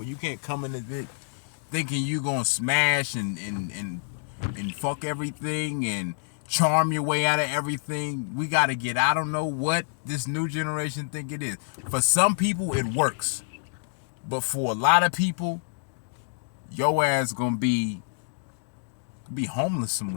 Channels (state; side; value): silent; right; digital silence